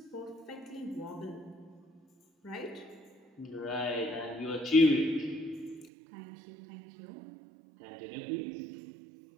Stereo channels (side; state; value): left; drops out; at 5.9 s